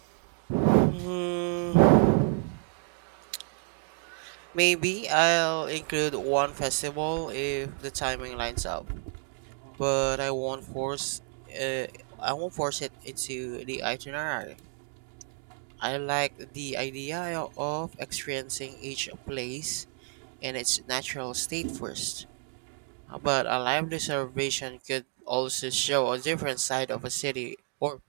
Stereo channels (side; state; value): left; silent; 56 dB below the other